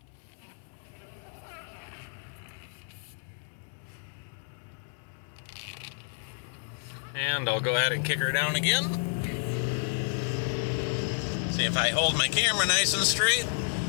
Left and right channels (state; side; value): silent; right; 57 dB below the other